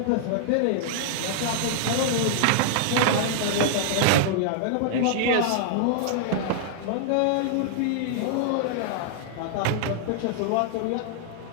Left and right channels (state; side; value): different; both; correlation -0.01